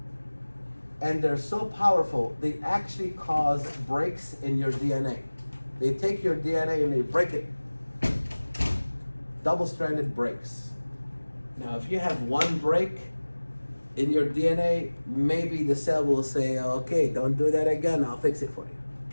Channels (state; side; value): inverted; both; correlation -1.00